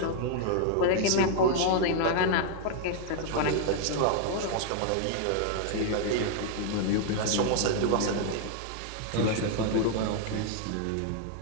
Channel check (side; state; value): both; different; correlation 0.00